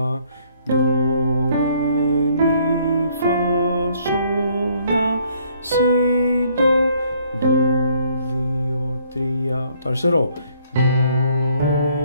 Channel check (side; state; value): both; inverted; correlation -0.64